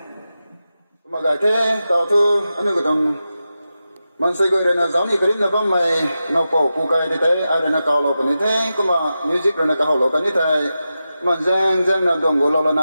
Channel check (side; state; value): both; inverted; correlation -0.91